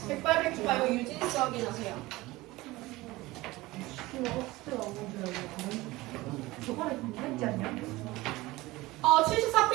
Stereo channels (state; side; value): quieter; left; 19.8 dB